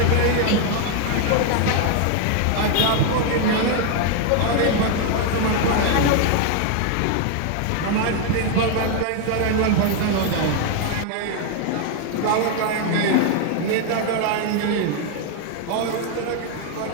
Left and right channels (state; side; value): different; both; correlation 0.00